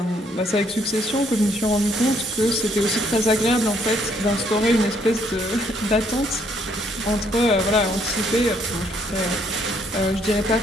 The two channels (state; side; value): normal; both; correlation 0.68